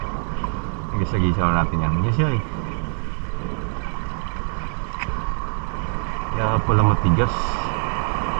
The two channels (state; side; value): silent; left; 63 dB below the other